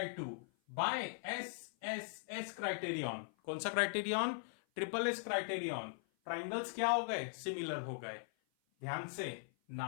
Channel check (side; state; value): right; silent; 51 dB below the other